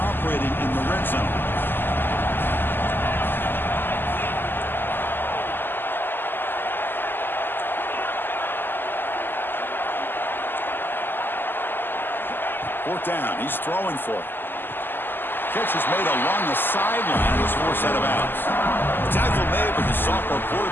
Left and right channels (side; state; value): right; late; 0.095 ms